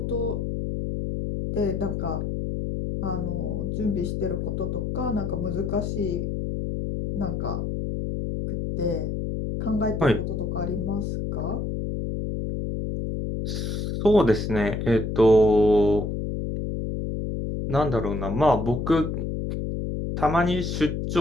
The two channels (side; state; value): left; noise; hum, 2 dB below the sound